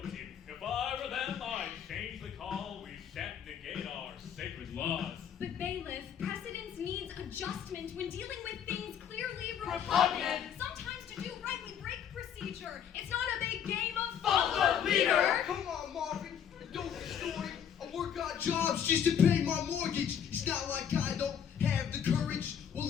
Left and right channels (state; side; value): quieter; right; 8.6 dB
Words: If I were them, I'd change the call. We shan't negate our sacred laws. But bailiff, precedence needs adjustment when dealing with things clearly Repugnant. Sometimes to do right, we break procedure. It's not a big game of Follow the leader. Come on, Marvin, don't distort it. I work odd jobs just to pay my mortgage. It's not like I don't have the courage. We're